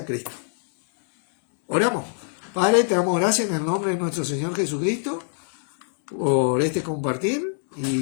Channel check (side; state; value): right; silent; digital silence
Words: Cristo. Oramos. Padre, te damos gracias en el nombre de nuestro Señor Jesucristo por este compartir